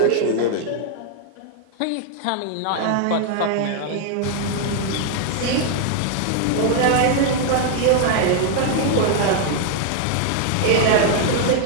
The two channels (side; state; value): both; different; correlation 0.00